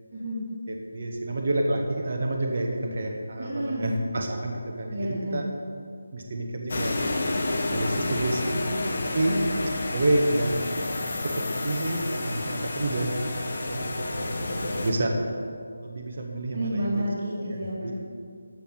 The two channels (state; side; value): inverted; both; correlation -0.90